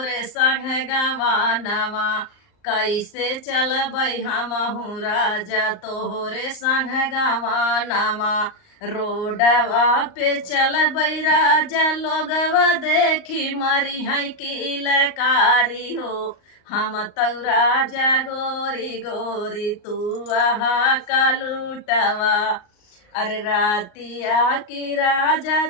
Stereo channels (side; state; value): right; late; 38 ms